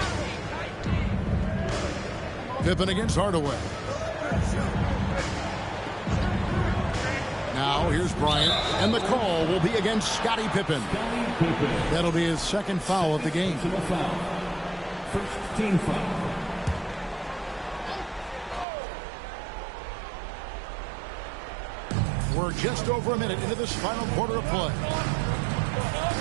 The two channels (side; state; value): left; drops out; at 18.7 s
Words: Pippen against Hardaway. Now here's Bryant, and the call will be against Scottie Pippen. That'll be his 2nd foul of the game. First team foul. We're just over a minute into this final quarter of play.